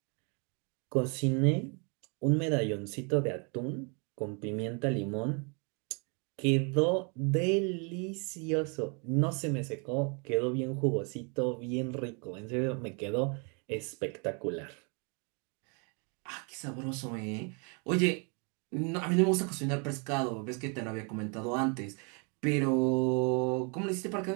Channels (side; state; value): left; quieter; 35.6 dB